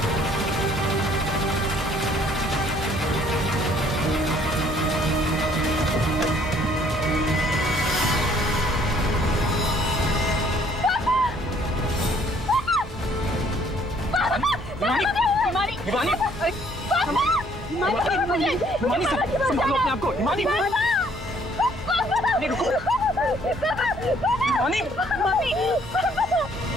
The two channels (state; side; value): normal; both; correlation 0.62